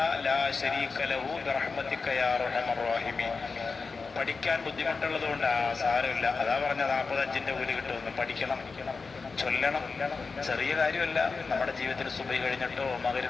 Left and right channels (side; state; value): right; quieter; 4.6 dB